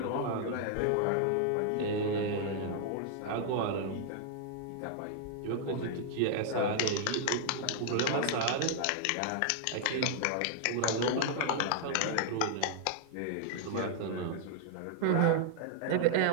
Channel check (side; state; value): both; different; correlation 0.00